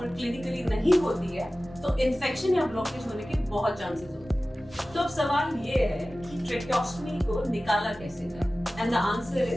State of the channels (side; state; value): both; normal; correlation 0.96